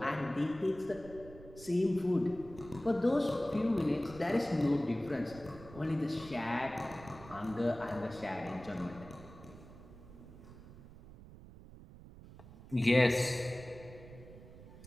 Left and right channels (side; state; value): right; noise; rumble, 17 dB below the sound